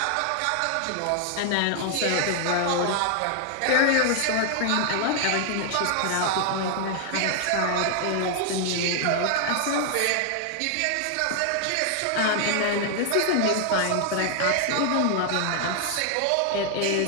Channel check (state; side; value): different; both; correlation 0.00